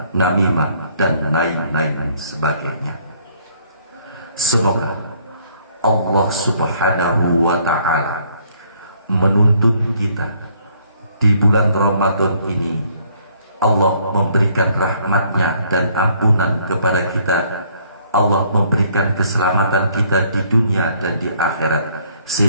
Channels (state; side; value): inverted; both; correlation -0.64